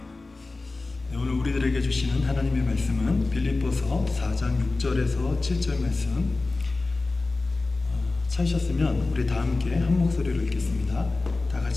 오늘 우리들에게 주시는 하나님의 말씀은 빌립보서 4장 6절에서 7절 말씀. 찾으셨으면 우리 다 함께 한 목소리로 읽겠습니다. 다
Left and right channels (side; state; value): right; quieter; 3.4 dB